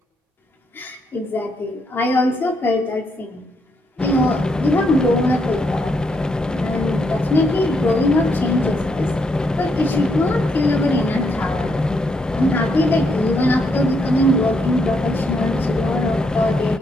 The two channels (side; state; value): both; normal; correlation 0.76